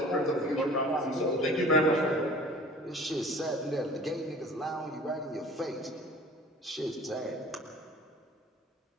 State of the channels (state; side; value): normal; both; correlation 0.46